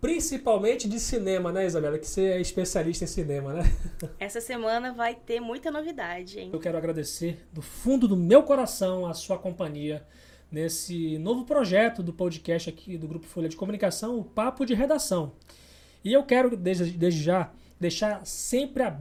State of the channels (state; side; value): identical; both; correlation 1.00